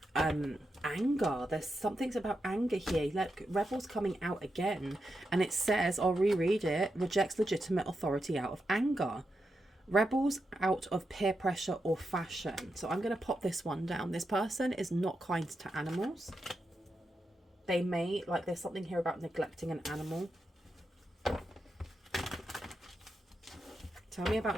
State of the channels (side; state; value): both; normal; correlation 0.86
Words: anger. There's something about anger here. Look, rebels coming out again, and it says, I'll reread it, rejects legitimate authority out of anger. Rebels out of peer pressure or fashion. So I'm going to pop this one down. This person is not kind to animals. They may, like, there's something here about neglecting an animal. Tell me about